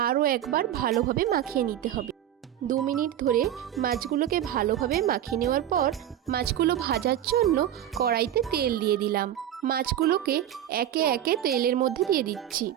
আরও একবার ভালোভাবে মাখিয়ে নিতে হবে। 2 মিনিট ধরে মাছগুলোকে ভালোভাবে মাখিয়ে নেওয়ার পর মাছগুলো ভাজার জন্য কড়াইতে তেল দিয়ে দিলাম। মাছগুলোকে একে একে তেলের মধ্যে দিয়ে দিচ্ছি।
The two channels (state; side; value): quieter; left; 11.2 dB